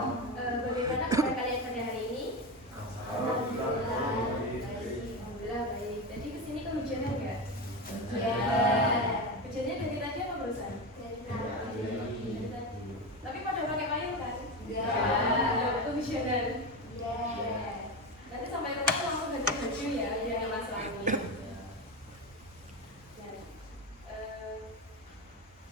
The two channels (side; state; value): both; normal; correlation 0.18